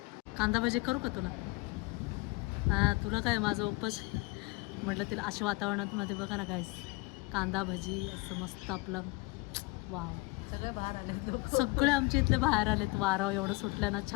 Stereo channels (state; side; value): quieter; right; 24.5 dB